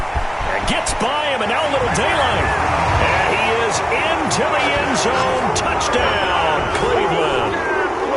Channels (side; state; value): both; identical; correlation 1.00